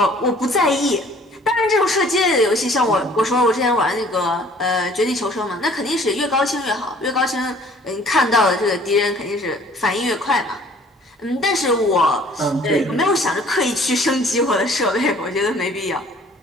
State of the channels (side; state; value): both; normal; correlation 0.54